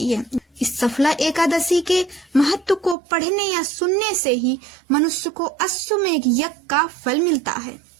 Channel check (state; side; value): drops out; left; at 3.0 s